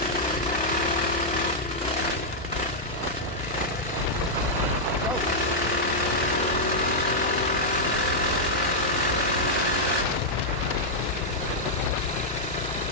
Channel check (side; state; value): left; noise; hum, 14 dB below the sound